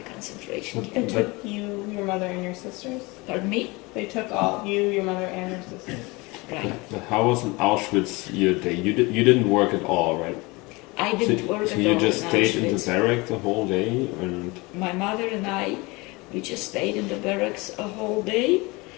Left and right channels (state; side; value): quieter; right; 24.7 dB